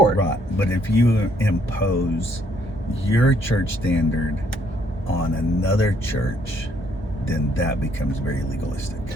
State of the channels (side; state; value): both; normal; correlation 0.68